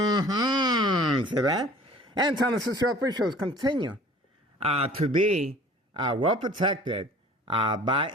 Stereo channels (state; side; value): normal; both; correlation 0.47